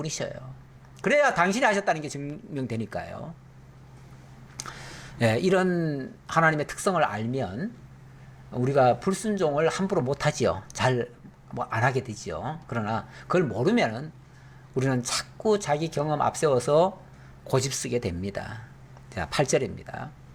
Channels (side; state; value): both; identical; correlation 1.00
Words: 그래야 당신이 하셨다는 게 증명되니까요. 예, 이런 하나님의 특성을 알면 우리가 불순종을 함부로 못하지요. 잘 안 하게 되지요. 그러나 그걸 모르면은 우리는 자꾸 자기 경험 앞세워서 고집 쓰게 됩니다. 자, 8절입니다.